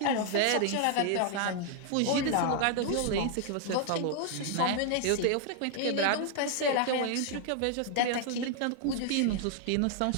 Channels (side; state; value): both; different; correlation 0.00